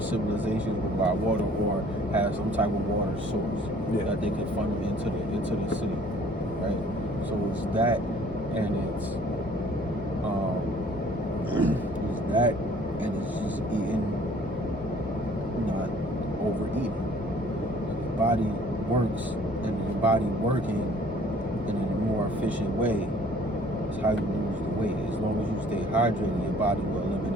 will buy water or have some type of water source that they can funnel into the city, right? So it's that, and it's just eating, not overeating. The body works, and the body working in a more efficient way is how you lose the weight. As long as you stay hydrated, your body will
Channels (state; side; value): normal; both; correlation 0.55